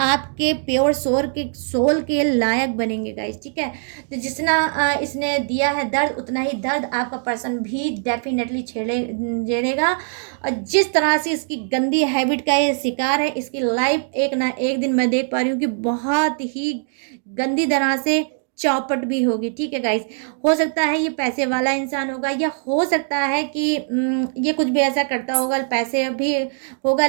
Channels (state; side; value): silent; left; 60 dB below the other